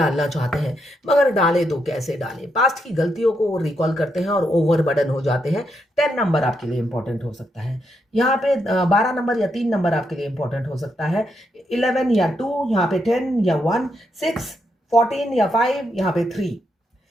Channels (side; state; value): both; normal; correlation 0.80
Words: चाहते हैं, मगर डाले तो कैसे डालें? पास्ट की गलतियों को वो रिकॉल करते हैं और ओवरबर्डन हो जाते हैं। 10 नंबर आपके लिए इंपॉर्टेंट हो सकता है। यहाँ पे 12 नंबर या 3 नंबर आपके लिए इंपॉर्टेंट हो सकता है। 11 या 2, यहाँ पे 10 या 1, 6, 14 या 5, यहाँ पे 3,